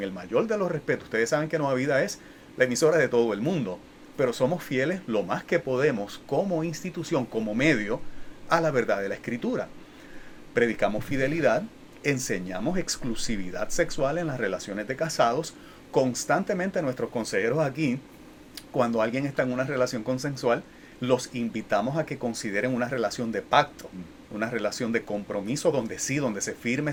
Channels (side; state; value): both; identical; correlation 1.00